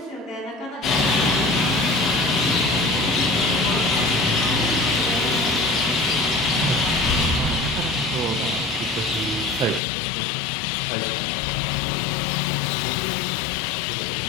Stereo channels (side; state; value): right; drops out; at 9.8 s